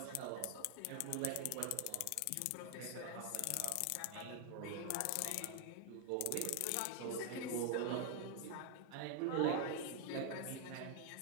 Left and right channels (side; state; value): both; different; correlation 0.00